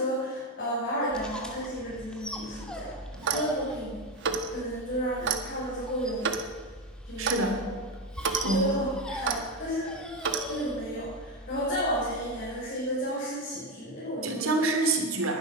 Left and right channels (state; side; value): normal; both; correlation 0.14